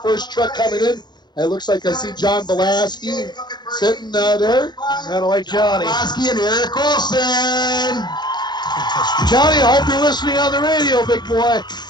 truck coming in. It looks like I see John Belaski sitting there. Kind of like Johnny. Belaski and Eric Olson. Johnny, I hope you're listening on the radio, big boy.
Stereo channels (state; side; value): late; right; 0.21 ms